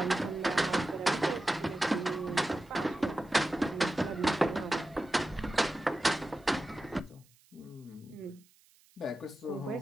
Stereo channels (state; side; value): noise; right; hiss, 30 dB below the sound